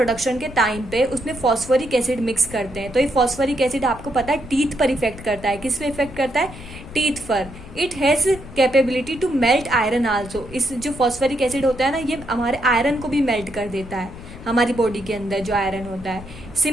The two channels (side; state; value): left; noise; rumble, 15 dB below the sound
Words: के टाइम पे उसमें फॉस्फोरिक एसिड मिक्स करते हैं, तो ये फॉस्फोरिक एसिड आपको पता है टीथ पर इफेक्ट करता है। किस पे इफेक्ट करता है? टीथ पर। It has capability to melt iron also, इस जो फॉस्फोरिक एसिड होता है ना ये हमारे आयरन को भी मेल्ट कर देता है, हमारी बॉडी के अंदर जो आयरन होता है।